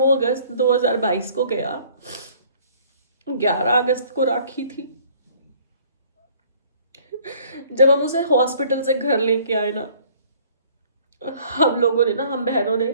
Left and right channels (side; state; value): both; inverted; correlation -0.56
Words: अगस्त 2022 को गया, 11 अगस्त को राखी थी। जब हम उसे हॉस्पिटल से घर लेके आए ना, हम लोगों ने ना, हम बहनों ने